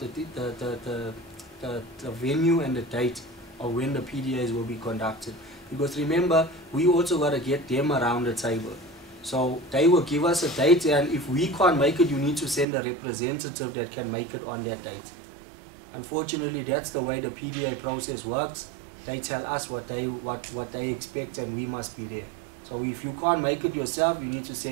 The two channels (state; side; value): drops out; left; at 12.7 s